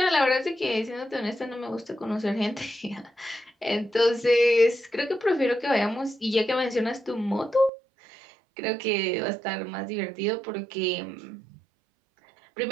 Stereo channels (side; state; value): left; drops out; at 7.7 s